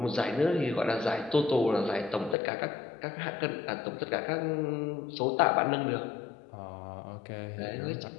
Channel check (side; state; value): right; drops out; at 2.4 s